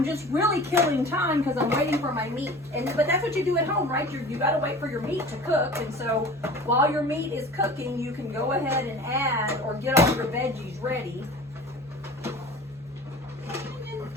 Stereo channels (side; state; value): both; normal; correlation 0.40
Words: just really killing time because I'm waiting for my meat. But that's what you do at home, right? You got to wait for your meat to cook. And so while your meat is cooking, you can go ahead and add or get all your veggies ready.